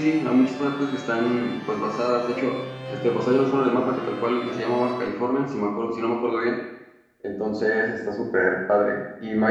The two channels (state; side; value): identical; both; correlation 1.00